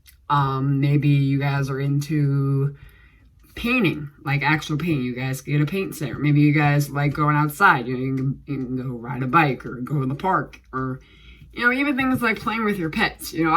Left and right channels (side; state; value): both; identical; correlation 1.00